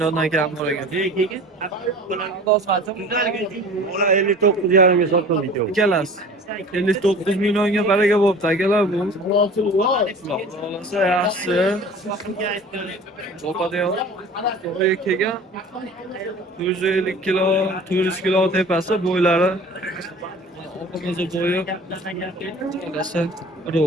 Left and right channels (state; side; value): normal; both; correlation 0.42